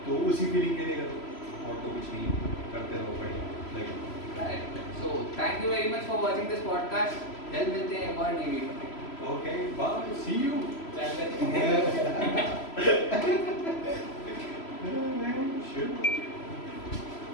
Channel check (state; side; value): late; right; 3.0 ms